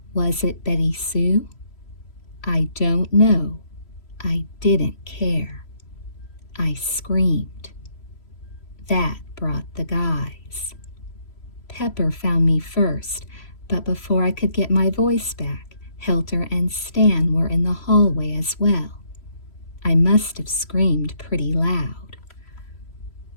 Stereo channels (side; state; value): right; late; 3.0 ms